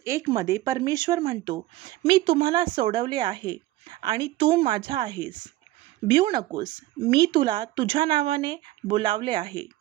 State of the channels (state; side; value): quieter; left; 16.5 dB